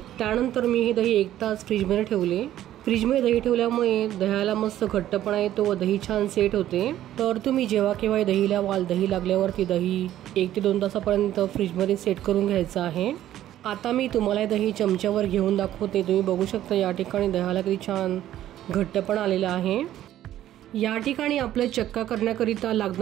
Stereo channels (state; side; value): quieter; left; 12.6 dB